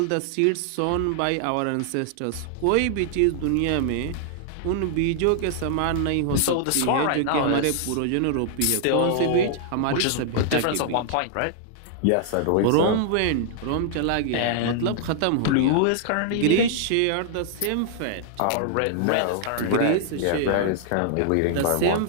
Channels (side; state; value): both; different; correlation -0.01